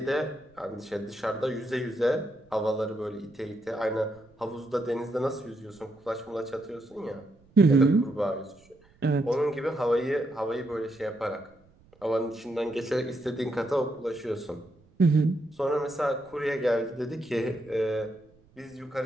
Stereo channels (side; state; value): right; noise; rumble, 30 dB below the sound